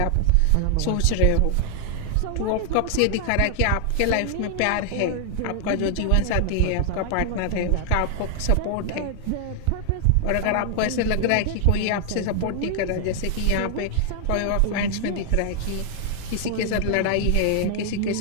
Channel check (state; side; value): different; both; correlation 0.00